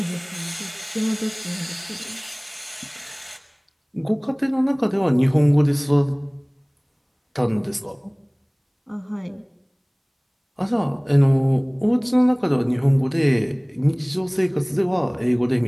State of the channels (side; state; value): both; identical; correlation 1.00